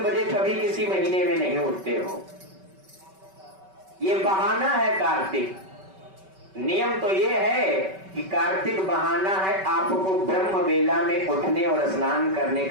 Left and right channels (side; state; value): left; late; 5.2 ms